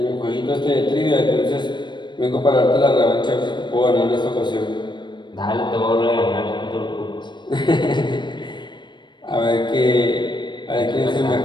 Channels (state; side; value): late; right; 0.22 ms